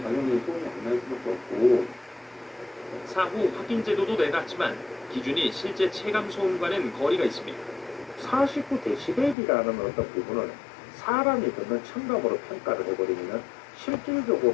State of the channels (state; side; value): drops out; right; at 9.3 s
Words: 당연히 소음이 안 날 수밖에 없고, 사후 확인 제도도 내놨지만 기준이 실제 체감 소음과는 거리가 있습니다. 49dB이라는 어떤 부분을 사람이 듣는 청감으로 평가를 해버리면